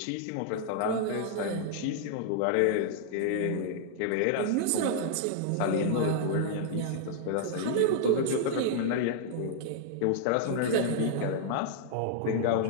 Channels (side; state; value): both; different; correlation -0.01